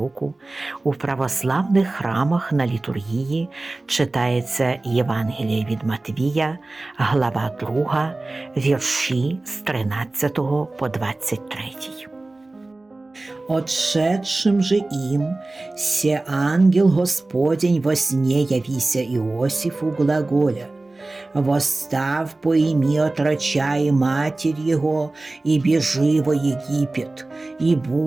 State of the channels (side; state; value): left; quieter; 3.0 dB